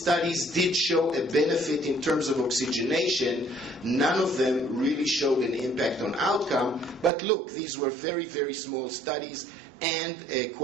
did show a benefit in terms of oxygenation, none of them really showed an impact on outcome. But look, these were very, very small studies, and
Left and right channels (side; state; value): left; drops out; at 7.1 s